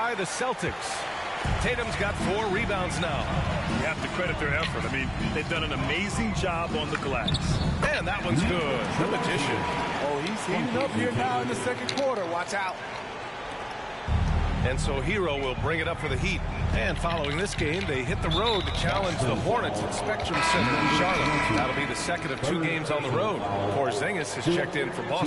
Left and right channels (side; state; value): both; identical; correlation 1.00